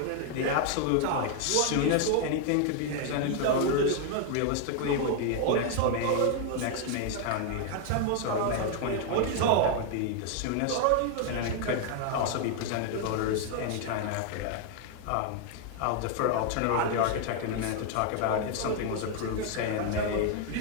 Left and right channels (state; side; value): different; both; correlation 0.00